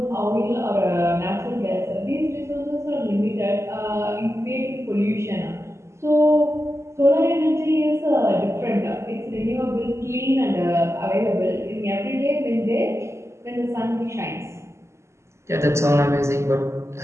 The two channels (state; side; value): late; left; 0.13 ms